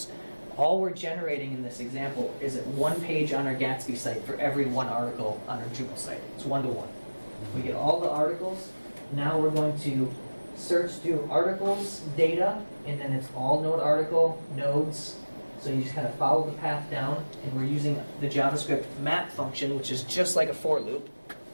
All we're generating in this example is one page on our Gatsby site for every one article on our Drupal site. It's 1-to-1. We get all the articles. Now we're going to search through articles, data, and then it's all node article, nodes. So you just kind of follow the path down, and we're using the JavaScript map function, which is just like a for loop,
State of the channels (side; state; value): both; inverted; correlation -1.00